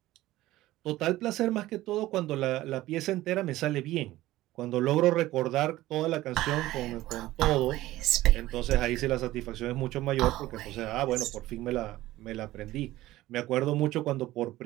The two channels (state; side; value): quieter; left; 16.4 dB